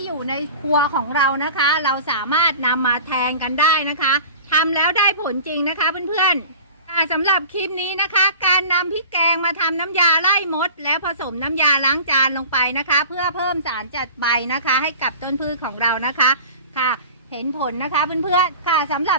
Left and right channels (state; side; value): inverted; both; correlation -0.39